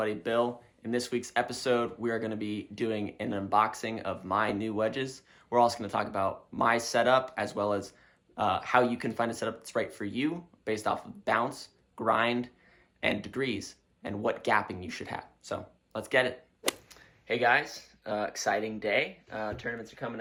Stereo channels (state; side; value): identical; both; correlation 1.00